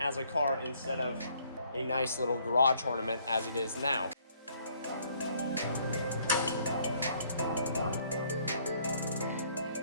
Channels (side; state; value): both; inverted; correlation -0.64